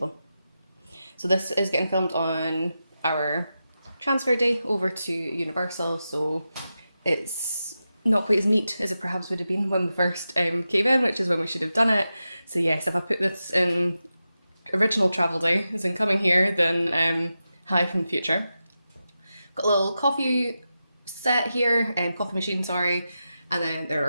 So this is getting filmed on our transfer day over to Universal, so it's not quite as neat as it perhaps would have been when we first came in, which is when we should have done it. So yes, if I put this in original travel day, as in coming here, then hi from the future. Got a little coffee set here, coffee machine, sorry, and then there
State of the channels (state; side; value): inverted; both; correlation -0.91